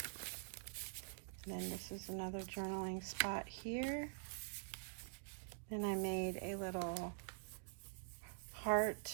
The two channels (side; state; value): left; silent; digital silence